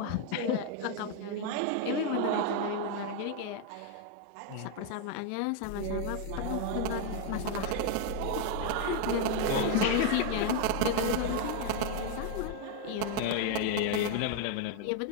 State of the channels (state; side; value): different; both; correlation 0.00